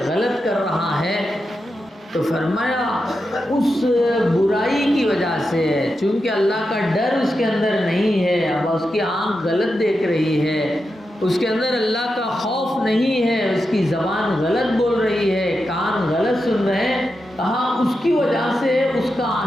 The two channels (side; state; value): both; normal; correlation 0.88